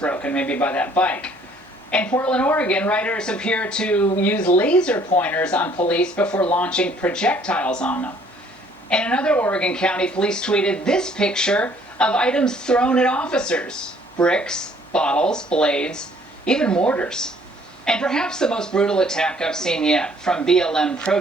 maybe by that bike. In Portland, Oregon, writers appear to use laser pointers on police before launching projectiles on them. In another Oregon county, police tweeted this picture of items thrown at officers: bricks, bottles, blades, even mortars. And perhaps the most brutal attack I've seen yet, from BLM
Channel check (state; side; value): normal; both; correlation 0.60